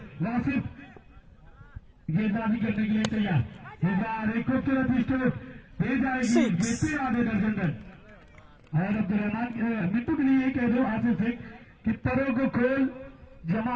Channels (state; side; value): identical; both; correlation 1.00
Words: वासिफ गेंदबाजी करने के लिए तैयार, एक खूबसूरत स्ट्रोक दे जाएगी, जीते आधे दर्जन रन। और अब्दुलरहमान मिट्टू के लिए कह दो आशीष सिंह कि परों को खोल